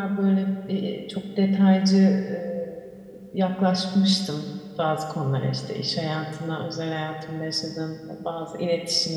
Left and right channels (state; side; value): identical; both; correlation 1.00